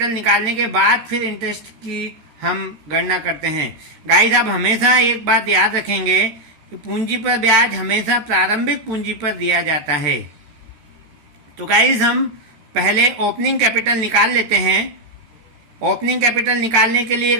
निकालने के बाद फिर इंटरेस्ट की हम गणना करते हैं। गाइस, आप हमेशा एक बात याद रखेंगे कि पूंजी पर ब्याज हमेशा प्रारंभिक पूंजी पर दिया जाता है। तो गाइस, हम पहले ओपनिंग कैपिटल निकाल लेते हैं। ओपनिंग कैपिटल निकालने के लिए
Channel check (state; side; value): late; left; 13 ms